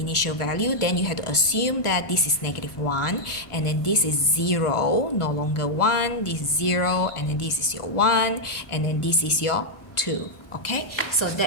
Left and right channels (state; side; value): late; right; 1.5 ms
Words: value, then you have to assume that this is -1, and then this is 0, no longer 1, this is 0, and then this is your 1, and then this is your 2. Okay, so